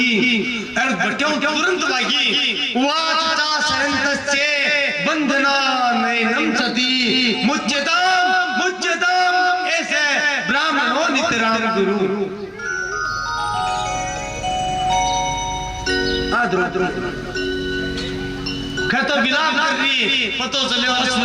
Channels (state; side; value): identical; both; correlation 1.00